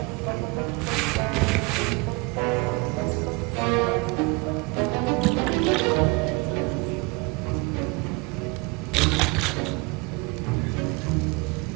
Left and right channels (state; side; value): quieter; left; 27.2 dB